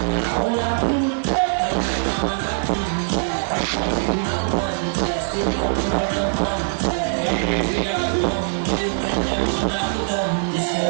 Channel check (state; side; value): silent; left; digital silence